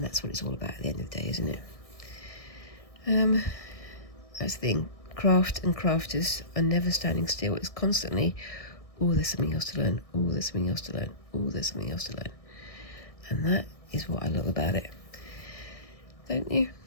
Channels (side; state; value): right; late; 1.6 ms